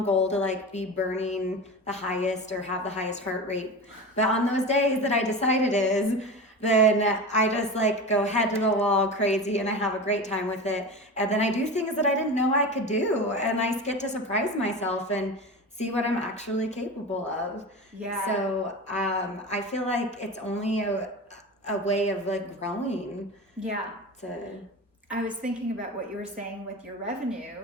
goal to like be burning the highest or have the highest heart rate. But on those days that I decide it is, then I just like go head to the wall crazy and I have a great time with it. And then I do things that I didn't know I could do. And I get to surprise myself and see what I'm actually capable of. Yeah. So I feel like it's only a way of like growing. Yeah. I was thinking about what you were saying with your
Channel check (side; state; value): both; normal; correlation 0.28